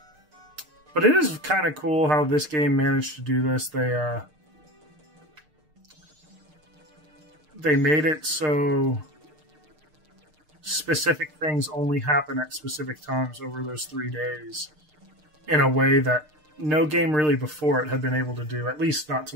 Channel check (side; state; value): left; late; 6.6 ms